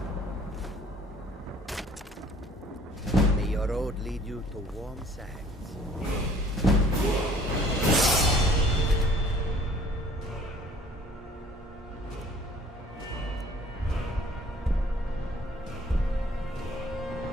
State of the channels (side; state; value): both; normal; correlation 0.55